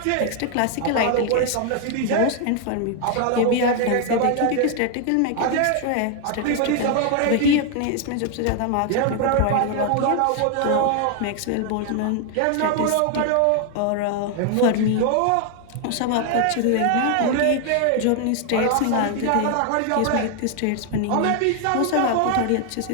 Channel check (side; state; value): both; different; correlation 0.00